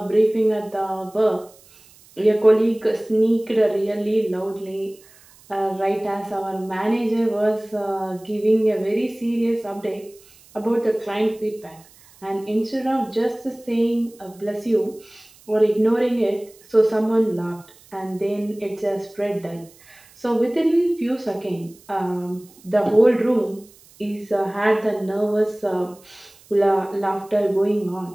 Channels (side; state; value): right; noise; hiss, 26 dB below the sound